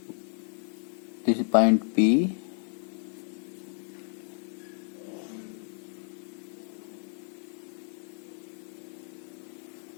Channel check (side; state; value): right; silent; 57 dB below the other